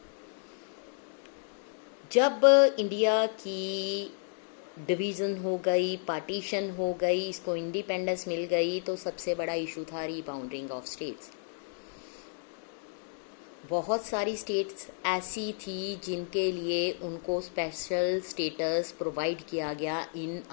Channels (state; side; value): silent; right; digital silence